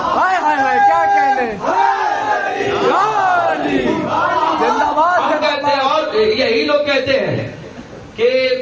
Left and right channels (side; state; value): both; identical; correlation 1.00